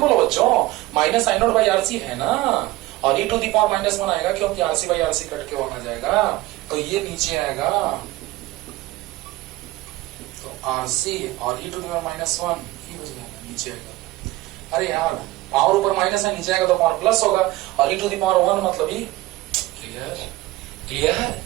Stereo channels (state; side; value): quieter; left; 18.4 dB